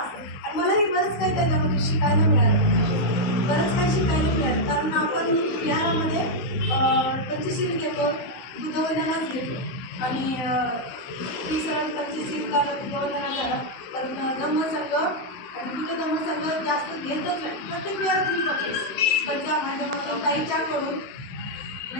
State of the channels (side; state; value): right; late; 16 ms